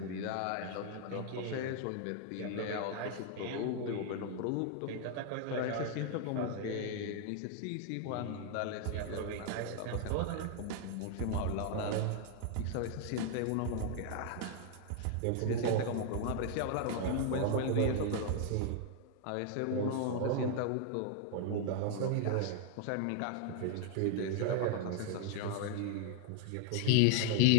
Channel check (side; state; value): both; different; correlation 0.00